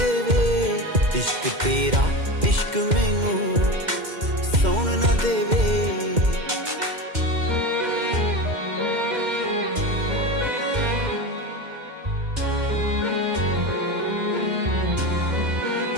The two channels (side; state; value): left; late; 2.1 ms